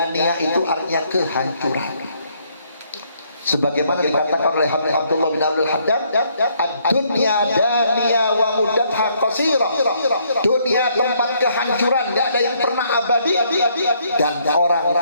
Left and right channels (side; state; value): both; inverted; correlation -0.69